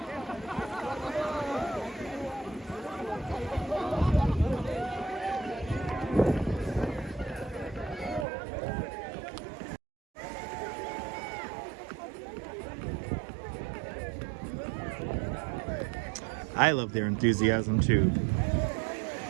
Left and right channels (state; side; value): drops out; left; at 8.2 s